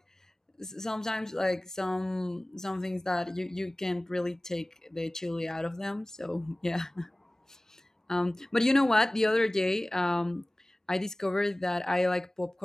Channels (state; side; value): normal; both; correlation 0.98